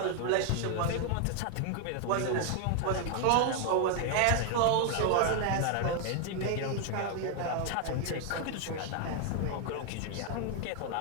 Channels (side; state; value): both; different; correlation 0.00